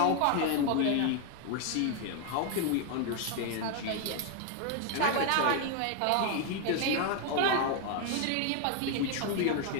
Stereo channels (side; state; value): both; different; correlation 0.01